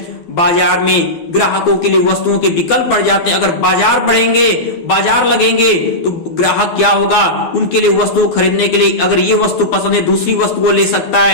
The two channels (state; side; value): late; right; 12 ms